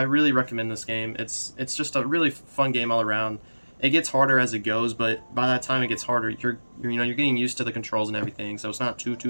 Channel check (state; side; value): inverted; both; correlation -1.00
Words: really recommend this game. It's just a really fun game all around. It gets harder as it goes, but by that time it gets harder, you're getting used to the controls and everything, so it's not